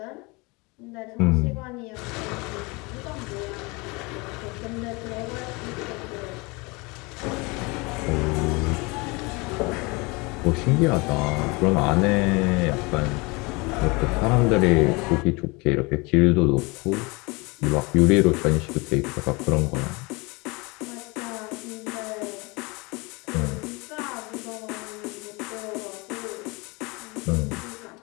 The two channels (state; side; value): quieter; right; 26.7 dB